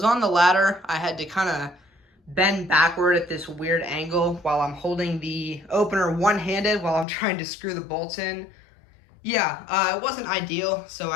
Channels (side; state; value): right; drops out; at 7.1 s